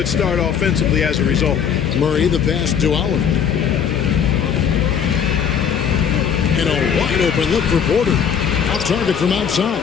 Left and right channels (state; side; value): quieter; right; 7.7 dB